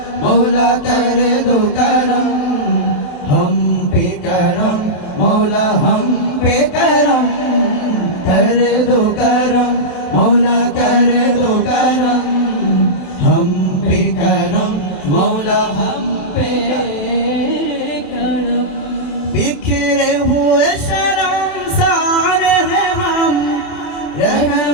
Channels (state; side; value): late; right; 27 ms